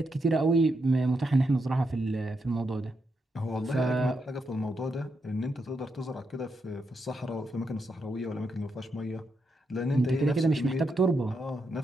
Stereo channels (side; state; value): both; normal; correlation 0.82